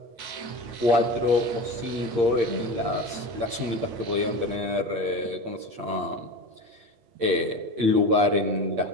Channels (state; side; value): late; left; 8.6 ms